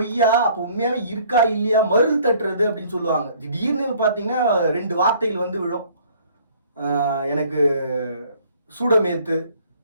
அப்போ உண்மையாகவே இருக்கா இல்லையா, மருள் தட்டுறது அப்படின்னு சொல்லுவாங்க. திடீர்னு பார்த்தீங்கன்னா 2 வார்த்தைகள் வந்து விழும். எனக்கு சூடமேத்து,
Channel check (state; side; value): inverted; both; correlation -0.57